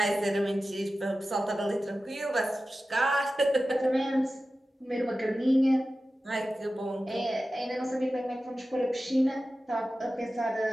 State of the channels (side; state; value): both; normal; correlation 0.94